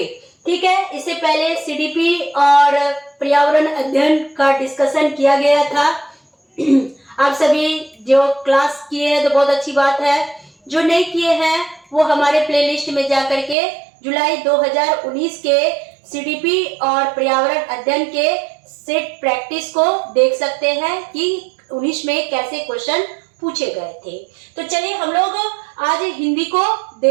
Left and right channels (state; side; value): drops out; left; at 13.6 s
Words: ठीक है, इससे पहले सीडीपी और पर्यावरण अध्ययन का डिस्कशन किया गया था। आप सभी जो क्लास किए हैं तो बहुत अच्छी बात है, जो नहीं किए हैं वो हमारे प्लेलिस्ट में जा करके जुलाई 2019 के सीडीपी और पर्यावरण अध्ययन के सेट प्रैक्टिस को देख सकते हैं कि 19 में कैसे क्वेश्चन पूछे गए थे। तो चलिए हम लोग आज हिंदी को